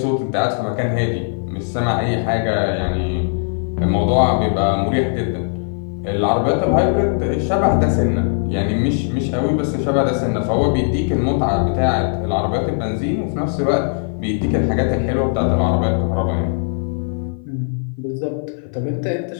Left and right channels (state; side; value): silent; right; 55 dB below the other